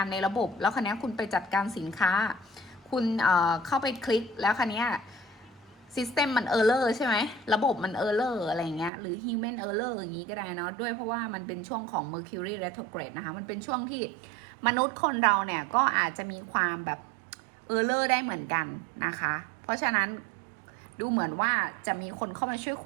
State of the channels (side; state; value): left; drops out; at 8.9 s